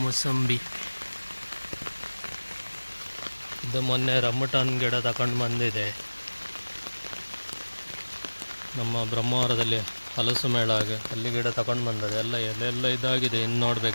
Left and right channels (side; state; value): both; inverted; correlation -1.00